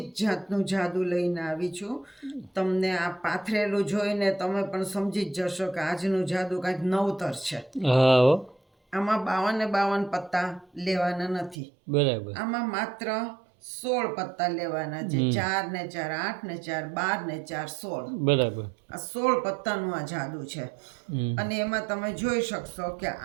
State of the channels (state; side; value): drops out; left; at 11.6 s